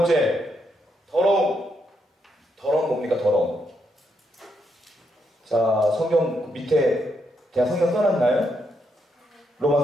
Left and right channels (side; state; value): both; normal; correlation 0.79